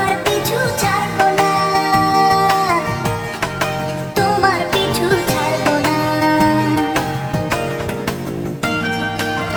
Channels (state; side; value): identical; both; correlation 1.00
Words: পিছু ছাড়বো না। তোমার পিছু ছাড়বো না।